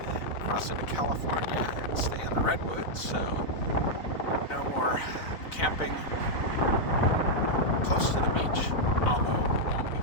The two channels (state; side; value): late; right; 4.0 ms